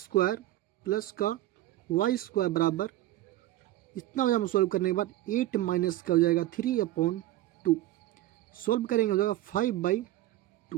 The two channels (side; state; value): left; quieter; 15.2 dB